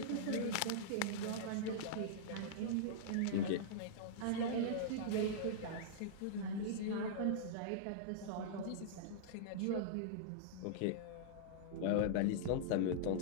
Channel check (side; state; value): both; different; correlation -0.02